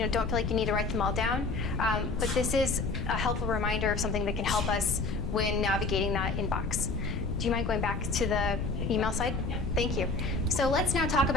don't feel like you need to write them all down. But this is a helpful reminder of something that can help us when navigating that inbox. Do you mind going back to the email side? Thank you. So let's now talk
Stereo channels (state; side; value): noise; left; rumble, 3 dB below the sound